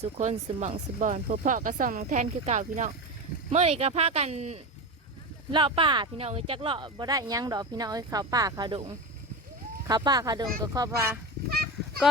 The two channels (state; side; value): normal; both; correlation 0.23